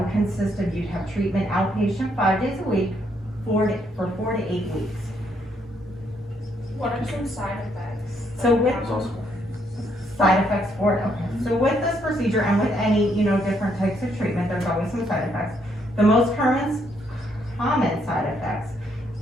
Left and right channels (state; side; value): normal; both; correlation 0.72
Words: consist of you'd have treatment outpatient 5 days a week for 4 to 8 weeks. What are some side effects? So with side effects for it, okay. So with this procedure and with any, different types of treatment, there's always some side effects. The most common side effects